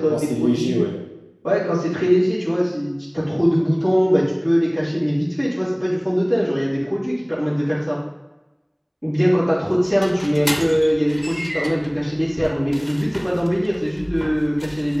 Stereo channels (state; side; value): identical; both; correlation 1.00